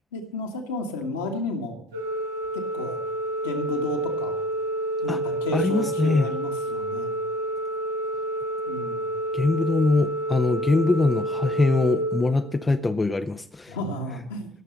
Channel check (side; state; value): both; normal; correlation 0.55